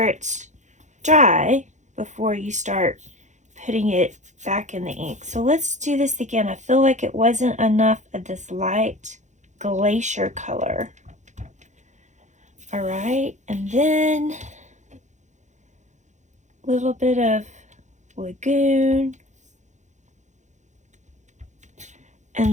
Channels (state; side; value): late; left; 0.35 ms